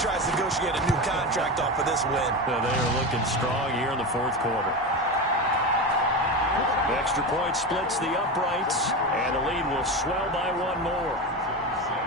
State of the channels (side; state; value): both; normal; correlation 0.21